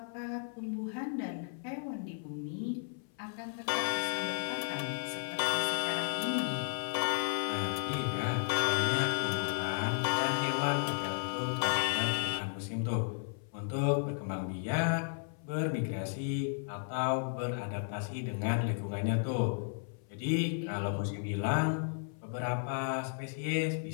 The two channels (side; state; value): right; silent; 55 dB below the other